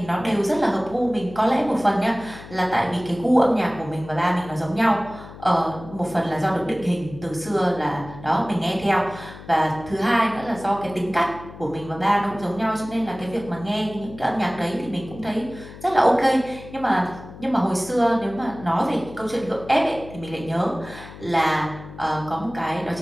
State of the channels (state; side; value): noise; left; hum, 16 dB below the sound